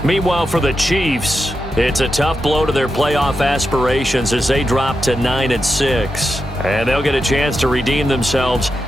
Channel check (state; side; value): normal; both; correlation 0.87